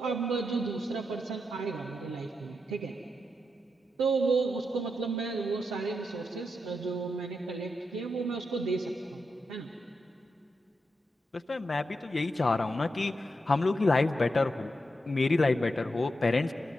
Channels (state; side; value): normal; both; correlation 0.86